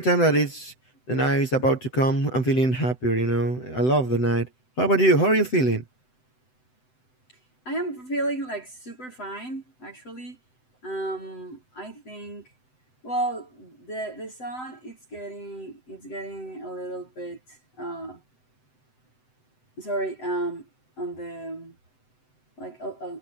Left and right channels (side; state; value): right; late; 7.9 ms